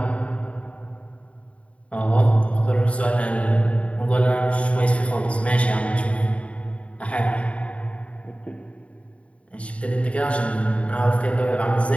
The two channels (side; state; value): right; late; 0.064 ms